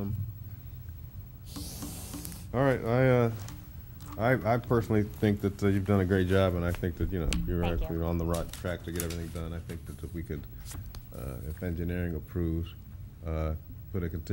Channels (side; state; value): both; identical; correlation 1.00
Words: All right, I personally think that you've done a great job, and I think that, you know, you're actually on the right track to get everything done. I think that if we could, if engineering approves, put a